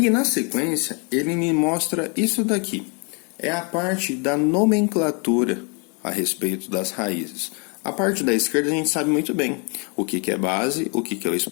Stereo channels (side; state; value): right; quieter; 34.7 dB